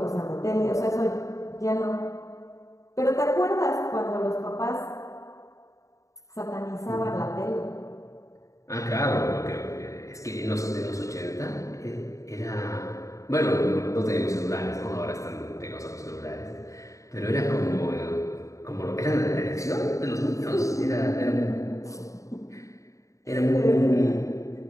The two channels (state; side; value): late; right; 0.15 ms